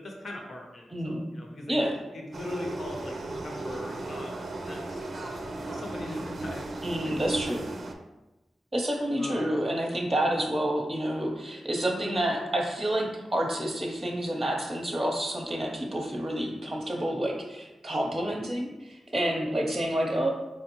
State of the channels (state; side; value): normal; both; correlation 0.90